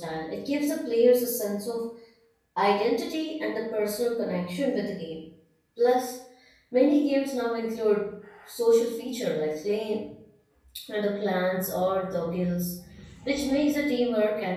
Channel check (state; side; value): identical; both; correlation 1.00